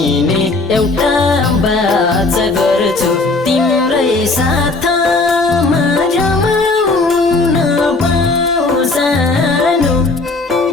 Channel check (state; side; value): quieter; right; 3.4 dB